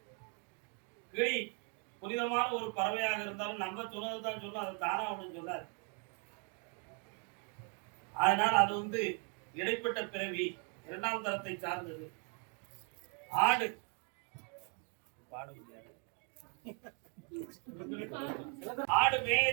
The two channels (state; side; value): quieter; left; 38.9 dB